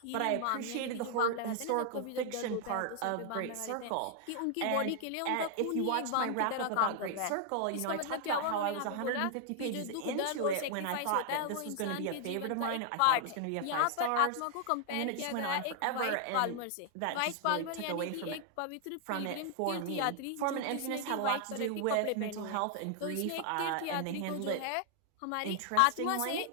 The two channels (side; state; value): both; different; correlation 0.00